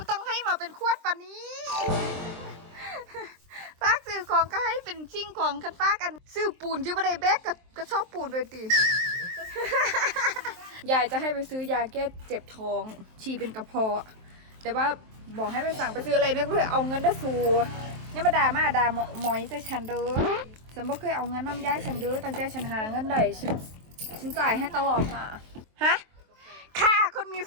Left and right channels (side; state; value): left; late; 23 ms